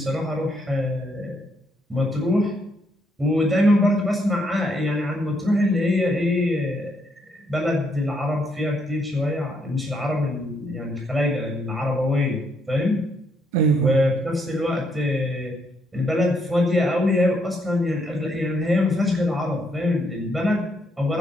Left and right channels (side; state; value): both; normal; correlation 0.74